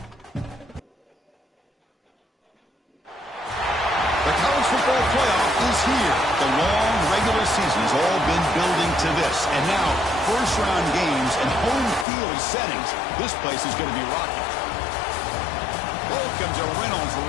The college football playoff is here. The long regular season has all been building to this. And now, first-round games and home field settings. This place is going to be rocking. Welcome to Reynolds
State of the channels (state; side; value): drops out; right; at 12.1 s